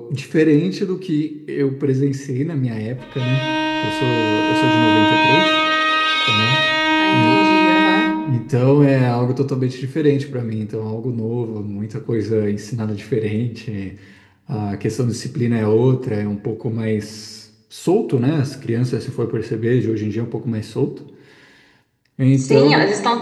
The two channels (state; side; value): identical; both; correlation 1.00